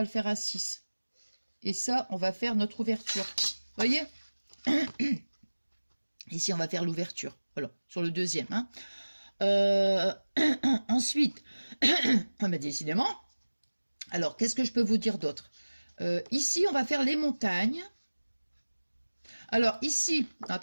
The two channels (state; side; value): inverted; both; correlation -1.00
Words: le faire à 6. Et ça, on va faire notre ouverture. Vous voyez? Ici, on va faire l'ouverture. Voilà, sur le deuxième. Hein. Ensuite, mais décidément, alors, qu'est-ce que je peux vous dire d'autre? Ici, on va faire les montagnes. Alors, ici,